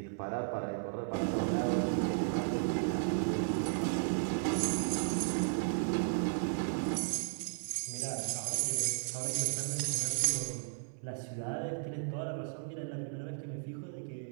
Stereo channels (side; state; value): left; silent; 55 dB below the other